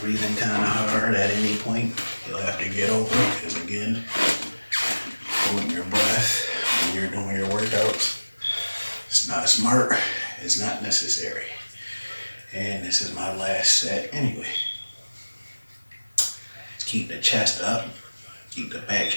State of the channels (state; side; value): inverted; both; correlation -1.00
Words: breathing kind of hard at any point, he'll have to get over it. Because again, holding your breath when you're doing your workouts, it's not smart. It's not necessary. And this is my last set anyway. Keep the chest up, keep the back